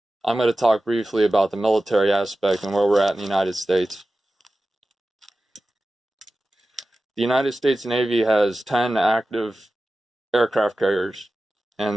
going to talk briefly about the military aspect and where we're at in the United States. The United States Navy has 10 active aircraft carriers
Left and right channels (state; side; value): normal; both; correlation 0.95